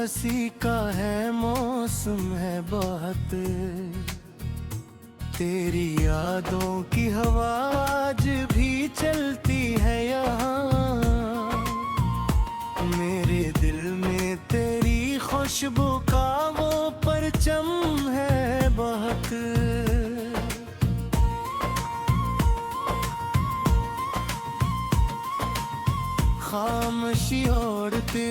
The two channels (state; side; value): identical; both; correlation 1.00